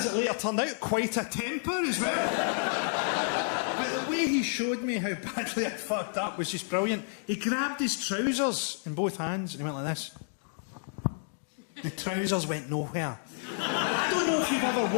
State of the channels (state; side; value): silent; right; digital silence